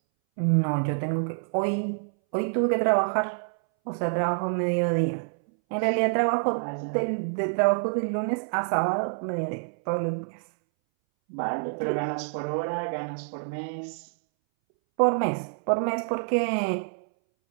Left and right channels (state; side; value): silent; left; 60 dB below the other